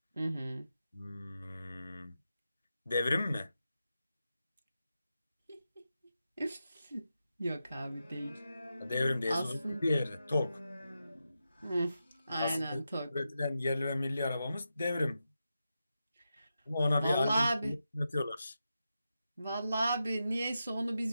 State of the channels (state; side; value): inverted; both; correlation -0.89